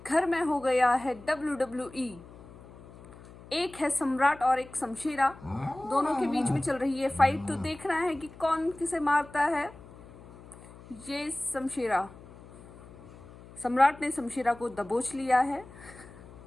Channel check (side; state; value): left; noise; hum, 19 dB below the sound